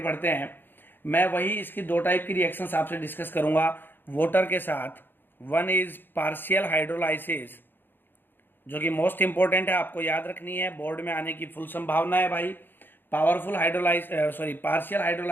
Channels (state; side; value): late; right; 0.097 ms